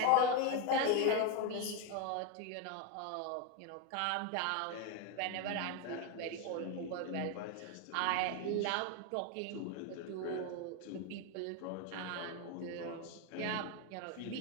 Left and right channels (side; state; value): both; different; correlation 0.02